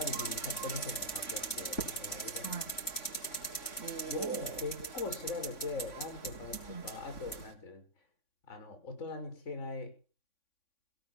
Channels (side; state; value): right; late; 3.5 ms